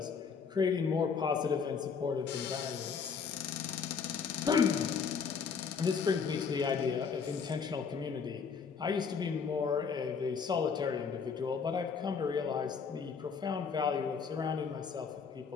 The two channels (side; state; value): right; quieter; 5.9 dB